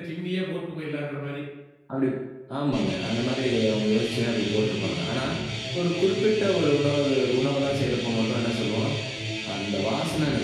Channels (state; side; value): identical; both; correlation 1.00